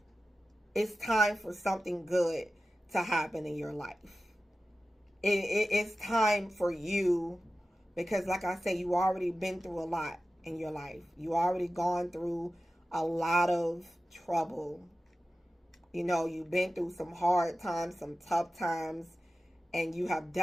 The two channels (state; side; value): normal; both; correlation 0.94